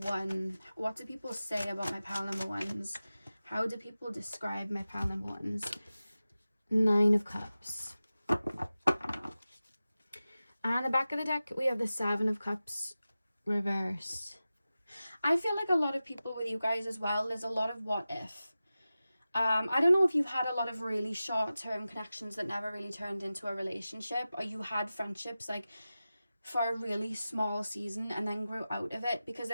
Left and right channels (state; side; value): inverted; both; correlation -0.95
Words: What do people say about my pile number 1s? How do people describe my pile number 1s? 9 of Cups. And the back of the deck, we have the 7 of Cups reversed. I feel like a lot of people with you guys as well, there's a lot of what if. I don't know if you've had a lot of really short-term connections that never really turned into a relationship, or you had friendships like for a really small season and then grew out of it, because